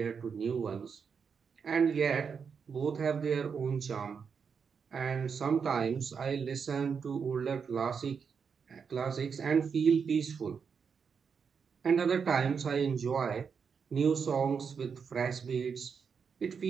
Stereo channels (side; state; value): left; quieter; 6.2 dB